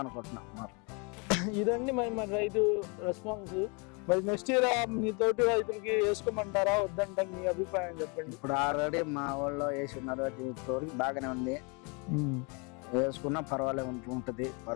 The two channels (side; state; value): right; quieter; 32.3 dB